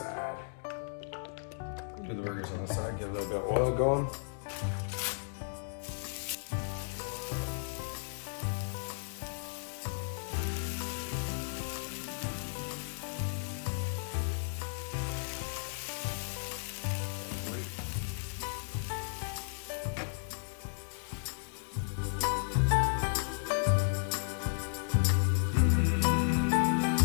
We'll do the burgers on this side, get a little bit of oil going.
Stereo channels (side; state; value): right; silent; digital silence